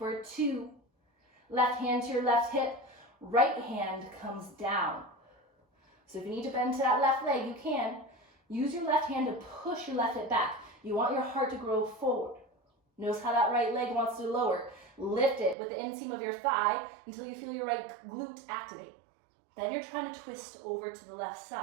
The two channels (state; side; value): drops out; left; at 15.6 s